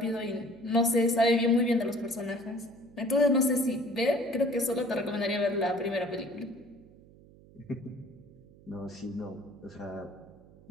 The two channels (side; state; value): right; noise; hum, 24 dB below the sound